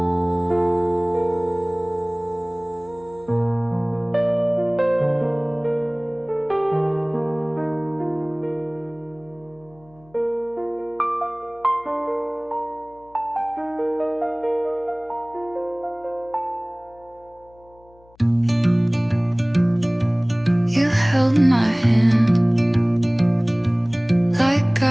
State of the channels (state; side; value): noise; left; hum, 29 dB below the sound